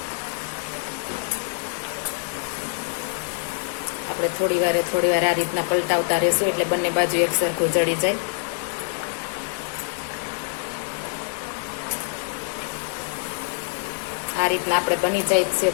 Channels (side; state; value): right; silent; 62 dB below the other